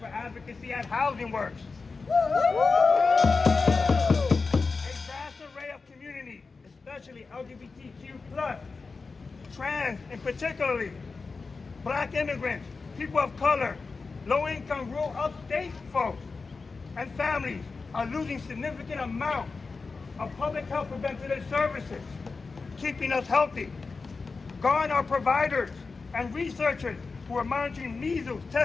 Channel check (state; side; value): quieter; right; 4.3 dB